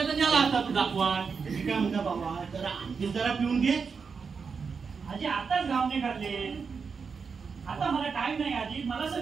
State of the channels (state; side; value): quieter; left; 5.5 dB